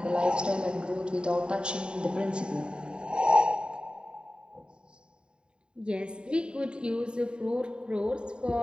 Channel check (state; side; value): late; left; 0.051 ms